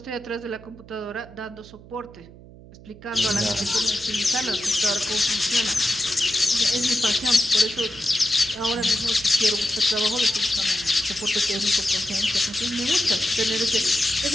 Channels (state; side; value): noise; right; hum, 20 dB below the sound